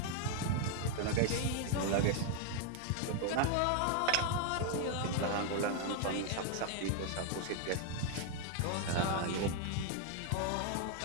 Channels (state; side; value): different; both; correlation 0.00